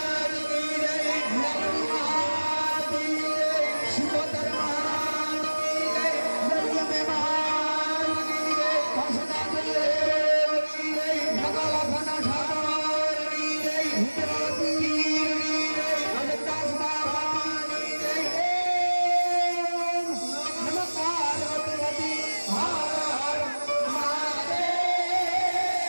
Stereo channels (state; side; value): inverted; both; correlation -1.00